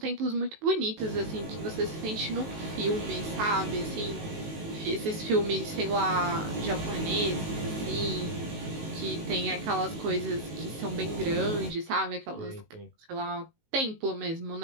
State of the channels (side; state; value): left; late; 19 ms